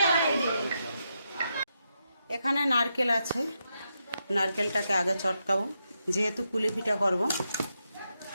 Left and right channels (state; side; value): inverted; both; correlation -0.84